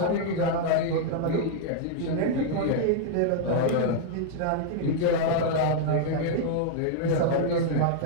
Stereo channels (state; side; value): different; both; correlation -0.01